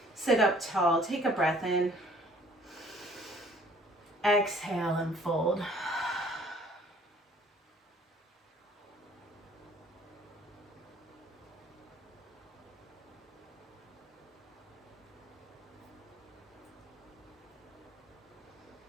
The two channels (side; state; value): both; normal; correlation 0.57